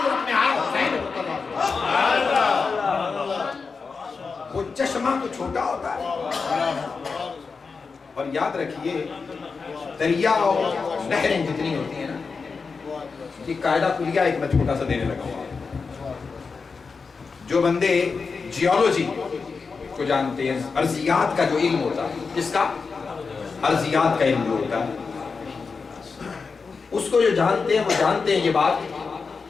میں آیا، حسین وہ چشمہ تو چھوٹا ہوتا ہے، اور یاد رکھیے دریا اور نہریں جتنی ہوتی ہیں نا، یہ قاعدہ کلیہ ایک میں چھوٹا سا دینے لگا ہوں۔ جو بندے جیولوجی کو جانتے ہیں، ارضیات کا جو علم ہوتا ہے، جس کا ارضیات کا علم جو ہوتا ہے، اس کو جو جانتے ہیں وہ جانتے ہیں یہ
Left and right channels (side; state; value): right; quieter; 4.9 dB